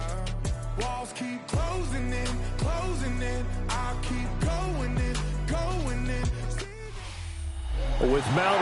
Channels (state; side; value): identical; both; correlation 1.00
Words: Walls keep closing in, closing in. I keep going in, going in. With Mount